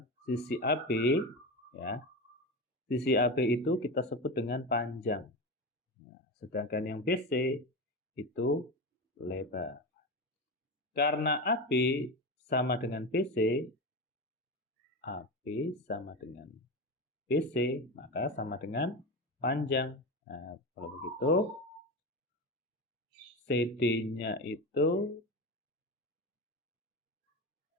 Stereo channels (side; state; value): both; normal; correlation 0.21